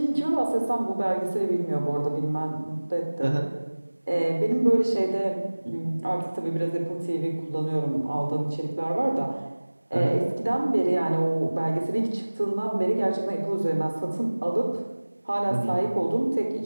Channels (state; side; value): inverted; both; correlation -1.00